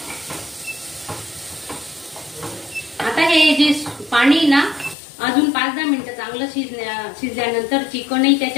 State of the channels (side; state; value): right; drops out; at 5.0 s